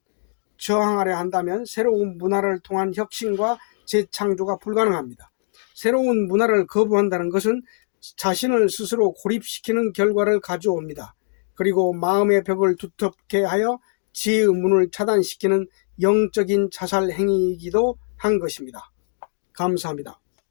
저항하려 한다면 새로운 문화를 통한 혁신과 재창조가 불가능합니다. 새로운 문화를 거부한다는 것은 자신을 스스로 고립시키는 결과를 가져옵니다. 그리고 마음의 벽을 두텁게 하여 지혜의 문을 차단시키는 영적인 자살 행위이기도 한 것입니다. 감사합니다.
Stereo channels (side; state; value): right; silent; digital silence